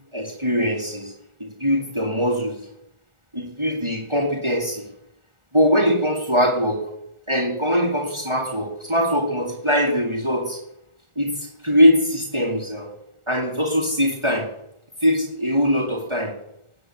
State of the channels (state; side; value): late; left; 1.4 ms